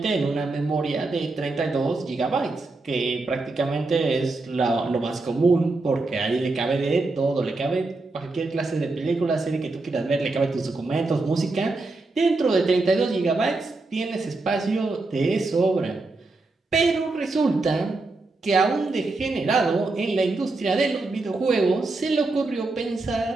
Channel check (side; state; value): left; quieter; 3.3 dB